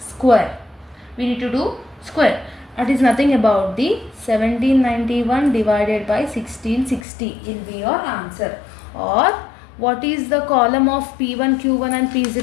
square. We need to do square. That is nothing about the 1791 divided by 1660 will be your answer. Or what is the column of P1 Q1 and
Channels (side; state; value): right; drops out; at 7.1 s